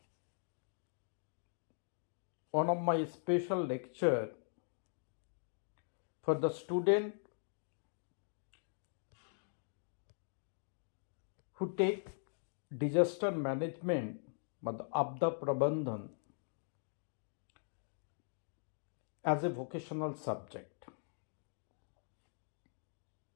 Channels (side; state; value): right; silent; digital silence